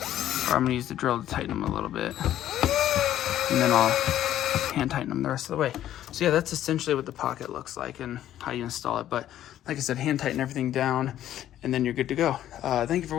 Or I'm gonna use the drill to tighten them a little bit, and then I'll hand tighten them the rest of the way. So yeah, that's essentially what the pocket looks like and how you install it. But like I said, hand tighten everything down, and then you're good to go. Thank you for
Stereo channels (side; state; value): right; quieter; 12.1 dB